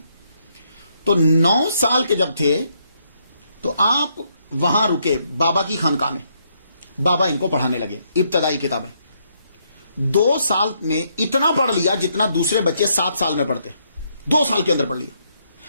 تو 9 سال کے جب تھے تو آپ وہاں رکے بابا کی خانقاہ میں، بابا ان کو پڑھانے لگے ابتدائی کتابیں۔ 2 سال میں اتنا پڑھ لیا جتنا دوسرے بچے 7 سال میں پڑھتے، 2 سال کے اندر پڑھ لیا۔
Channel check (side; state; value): both; inverted; correlation -0.74